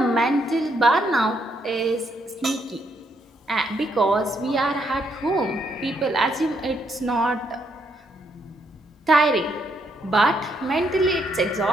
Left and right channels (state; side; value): normal; both; correlation 0.75